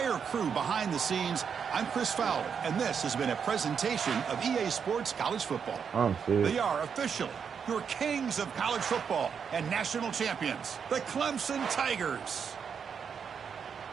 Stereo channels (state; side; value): quieter; left; 6.8 dB